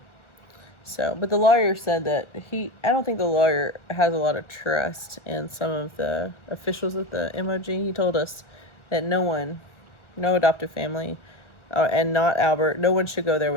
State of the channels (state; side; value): late; right; 1.4 ms